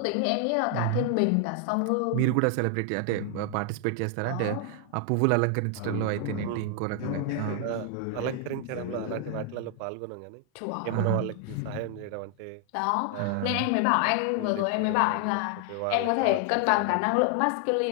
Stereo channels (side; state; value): both; different; correlation 0.00